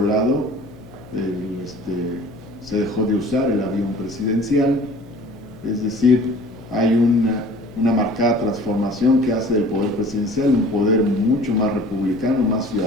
lado, se dejó de usar el avión presidencial, es decir, hay una marcada transformación que hace del poder presidencial un poder mucho más republicano, más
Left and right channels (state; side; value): noise; left; hum, 21 dB below the sound